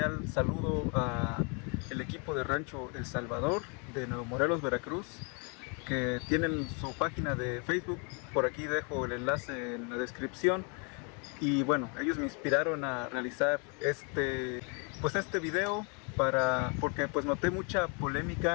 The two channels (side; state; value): right; quieter; 35.0 dB